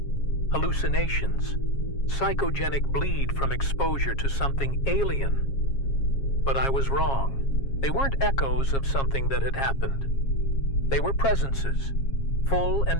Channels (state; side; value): late; right; 7.3 ms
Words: hallucinations, psychogenic bleed from exposure to something alien. But I was wrong. They weren't echoes of something that had happened. They were presences, full and